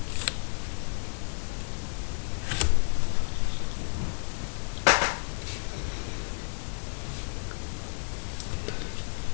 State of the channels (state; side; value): silent; right; digital silence